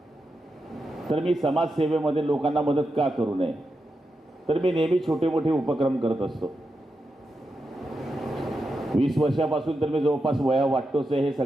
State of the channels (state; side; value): normal; both; correlation 0.87